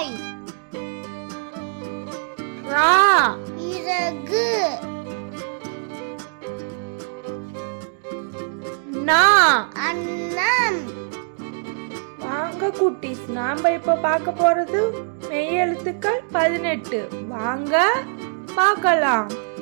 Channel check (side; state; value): left; silent; 61 dB below the other